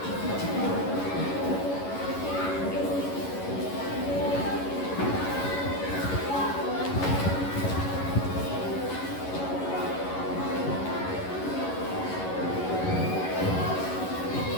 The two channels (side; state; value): right; late; 11 ms